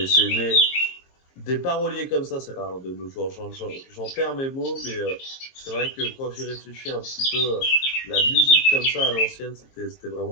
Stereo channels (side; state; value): right; late; 22 ms